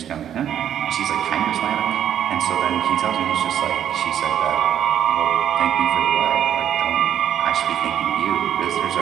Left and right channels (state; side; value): quieter; left; 10.0 dB